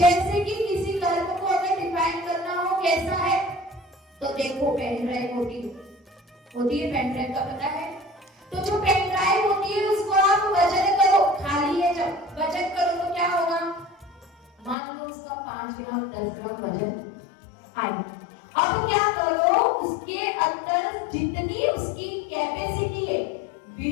कि किसी कर्म को अगर डिफाइन करना हो कैसा है, तो देखो पेन ड्राइव होती है पेन ड्राइव का पता है। तो जो पेन ड्राइव होती है उसको आप वजन करो, खाली है जब वजन करो तो क्या होगा, मान लो उसका 5 ग्राम 10 ग्राम वजन आए। अब क्या करो, उसके अंदर जितनी उसकी कैपेसिटी है,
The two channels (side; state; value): right; drops out; at 14.8 s